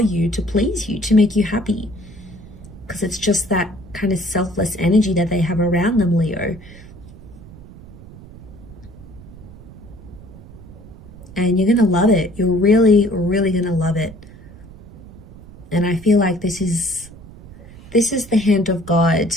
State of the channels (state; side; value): noise; right; rumble, 18 dB below the sound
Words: you, to please you, to make you happy. Because it's just that kind of selfless energy that they have around them, Leo. And you're going to love it. You're really, really going to love it. And I feel like this is the hand of God.